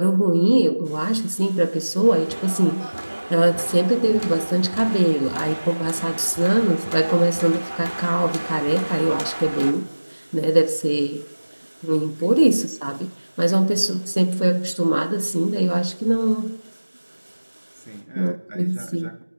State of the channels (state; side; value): inverted; both; correlation -1.00